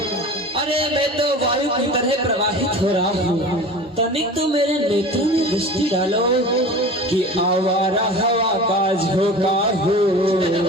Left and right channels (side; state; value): both; normal; correlation 0.36